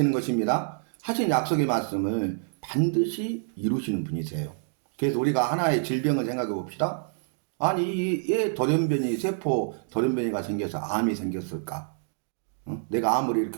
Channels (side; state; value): left; silent; digital silence